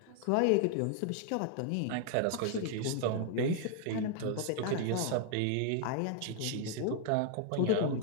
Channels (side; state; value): both; different; correlation 0.00